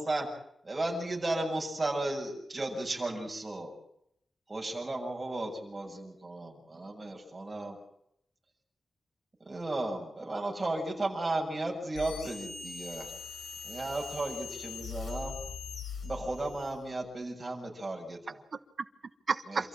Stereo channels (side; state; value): both; normal; correlation 0.92